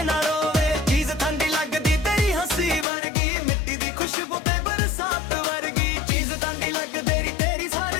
ਨਾ ਰੋਵੇ ਚੀਜ਼ ਠੰਡੀ ਲੱਗਦੀ ਤੇਰੀ ਹੱਸੀ ਵਰਗੀ ਮਿੱਟੀ ਦੀ ਖੁਸ਼ਬੂ ਤੇ ਬਰਸਾਤ ਵਰਗੀ ਚੀਜ਼ ਠੰਡੀ ਲੱਗਦੀ ਤੇਰੀ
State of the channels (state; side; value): drops out; right; at 2.9 s